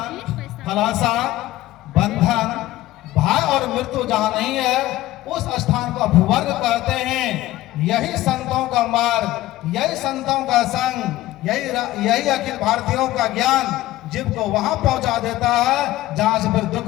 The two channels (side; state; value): right; quieter; 16.1 dB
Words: फलाशा, बंधन, भय और मृत्यु जहां नहीं है उस स्थान को अपवर्ग कहते हैं। यही संतों का मार्ग, यही संतों का संग, यही अखिल भारतीयों का ज्ञान जीव को वहां पहुंचा देता है जहां से फिर